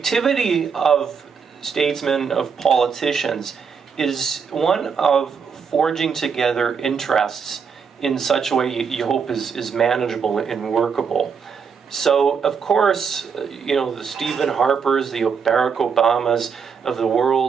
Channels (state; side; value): quieter; left; 6.2 dB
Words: of statesmen, of politicians, is one of forging together interests in such a way you hope is manageable and workable. So, of course, you know, the Stephen Harpers, the Barack Obamas of the